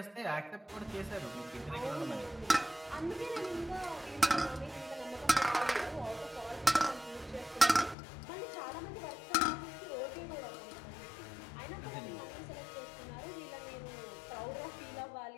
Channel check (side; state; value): right; drops out; at 8.0 s